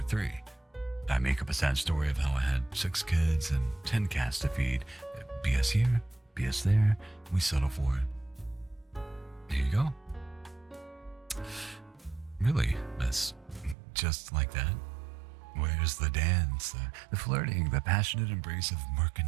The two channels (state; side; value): drops out; left; at 13.8 s